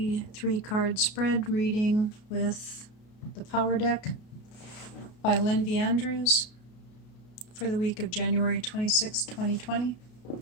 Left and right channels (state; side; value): late; right; 33 ms